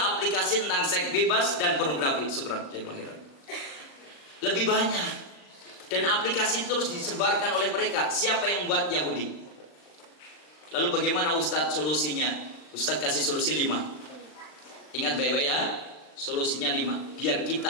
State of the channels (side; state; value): right; late; 40 ms